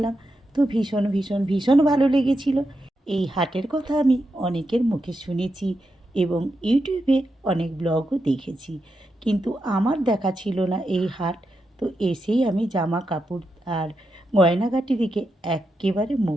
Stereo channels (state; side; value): normal; both; correlation 0.86